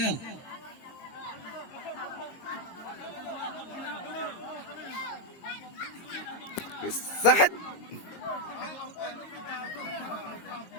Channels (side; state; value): right; late; 22 ms